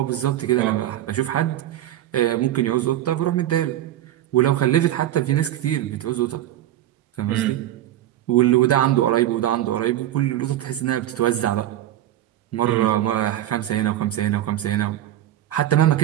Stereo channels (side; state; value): left; quieter; 12.9 dB